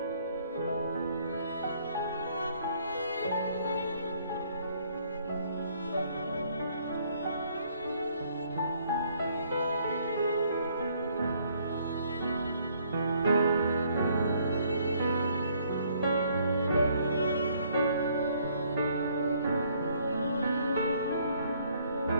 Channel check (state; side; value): inverted; both; correlation -0.65